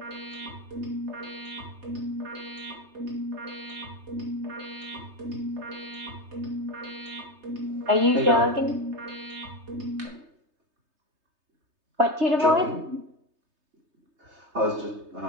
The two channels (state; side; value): late; left; 3.3 ms